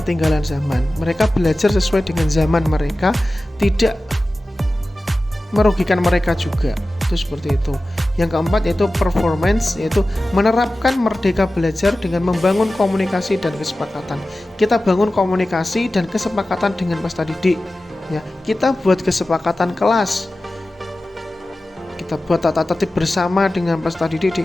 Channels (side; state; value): both; normal; correlation 0.95